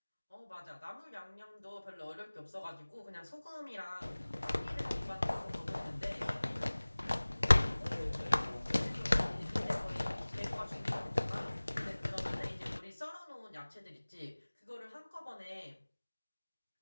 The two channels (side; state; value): both; inverted; correlation -1.00